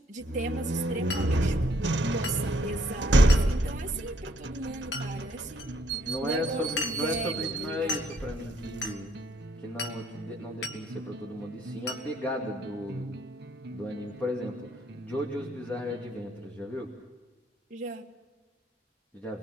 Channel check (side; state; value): both; normal; correlation 0.68